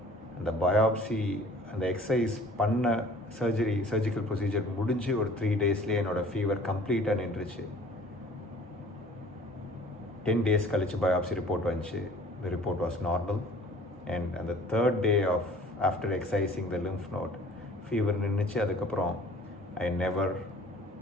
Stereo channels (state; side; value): normal; both; correlation 0.50